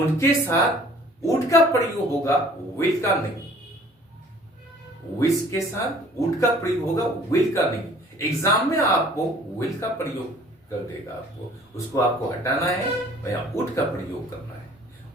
साथ वुड का प्रयोग होगा, विल का नहीं। विश के साथ वुड का प्रयोग होगा, विल का नहीं। एग्जाम में आपको विल का प्रयोग कर देगा, आपको उसको आपको हटाना है, या वुड का प्रयोग करना है।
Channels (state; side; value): normal; both; correlation 0.53